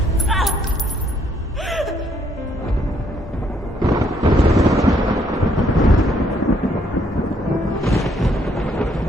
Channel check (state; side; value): normal; both; correlation 0.69